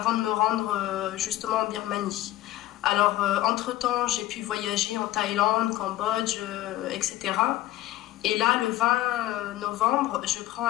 de me rendre justement en Birmanie. Alors, entre-temps, j'ai pu voyager en Thaïlande, Cambodge, etc. Et là, le 20 novembre, je prends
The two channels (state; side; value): quieter; right; 15.4 dB